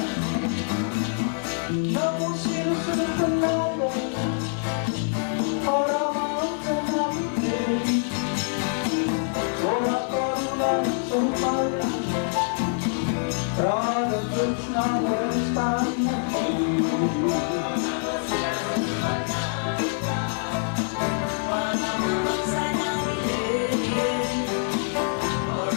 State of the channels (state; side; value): silent; right; digital silence